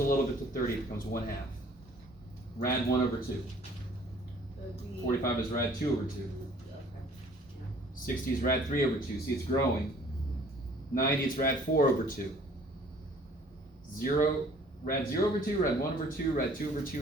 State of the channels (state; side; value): normal; both; correlation 0.55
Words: little bit to 30. It becomes 1/2. Rad 1 over 2. 45 is rad 2 over 2. 60 is rad 3 over 2. See, it's growing. 90 is rad 4 over 2. 0, rad 0 over 2, rad 1 over 2, rad 2 over